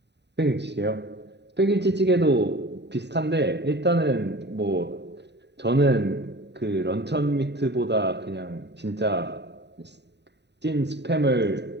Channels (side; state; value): left; late; 0.50 ms